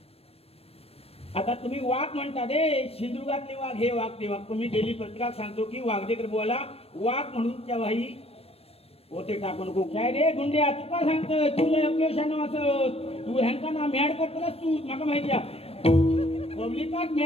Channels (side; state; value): right; late; 0.28 ms